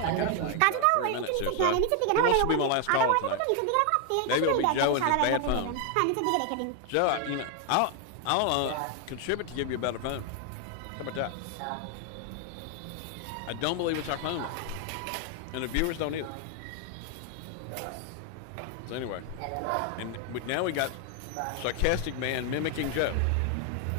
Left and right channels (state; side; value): different; both; correlation 0.01